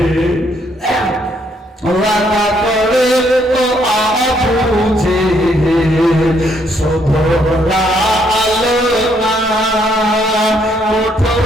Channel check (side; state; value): both; normal; correlation 0.70